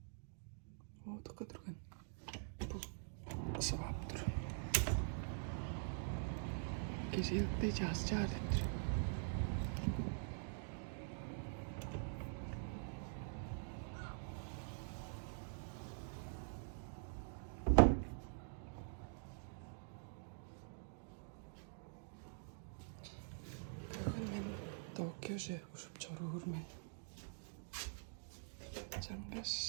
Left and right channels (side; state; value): left; silent; digital silence